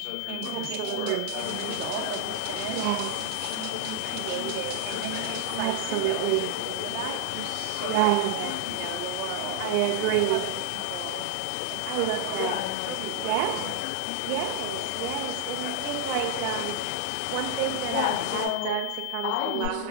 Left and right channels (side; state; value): both; different; correlation 0.00